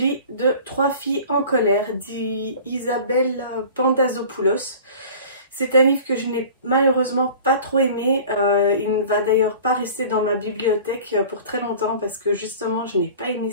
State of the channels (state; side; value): inverted; both; correlation -0.42